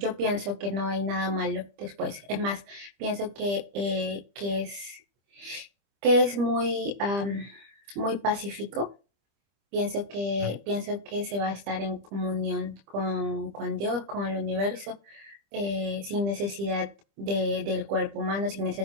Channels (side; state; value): left; late; 25 ms